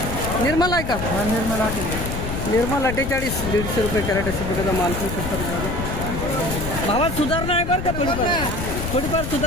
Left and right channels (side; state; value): left; noise; rumble, 4 dB below the sound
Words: निर्मल आहे का? निर्मल 48. 150 रुपये कॅरेट अशा प्रकारचा माल करू शकतात. भावात सुधारणा आहे बरं का? थोडीफार